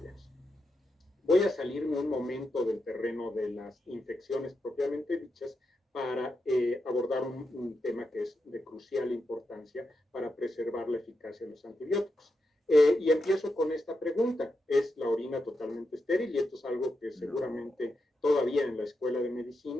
Voy a salirme un momento del terreno de las infecciones propiamente dichas para abordar un tema que es de crucial importancia para preservar la eficacia de los antibióticos. Y empiezo con esta pregunta. ¿Es la orina totalmente estéril? Y esto es algo que seguramente todavía en la escuela de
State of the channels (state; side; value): normal; both; correlation 0.86